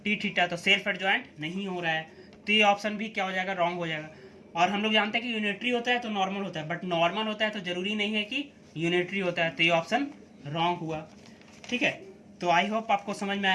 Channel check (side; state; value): both; identical; correlation 1.00